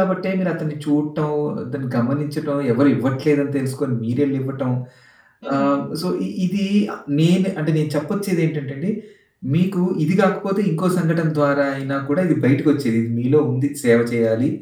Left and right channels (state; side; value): identical; both; correlation 1.00